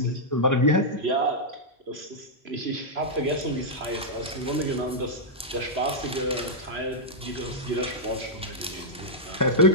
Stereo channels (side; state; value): both; normal; correlation -0.07